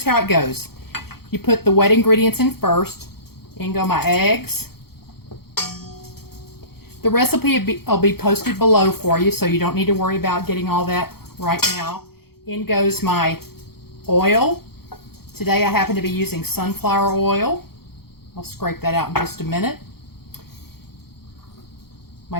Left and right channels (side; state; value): right; late; 0.95 ms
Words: how it goes. You put the wet ingredients in first. In go my eggs. The recipe will be posted below for you, so you don't need to worry about getting all that right now. In goes my oil. Today I happen to be using sunflower oil. I'll scrape that out in just a minute. My